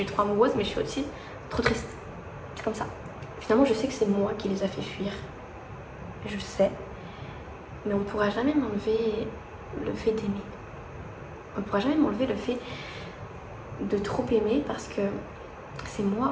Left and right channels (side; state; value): both; identical; correlation 1.00